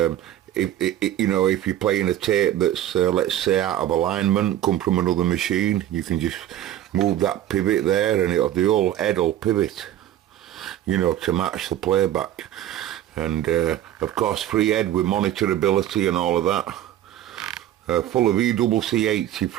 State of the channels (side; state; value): left; quieter; 12.3 dB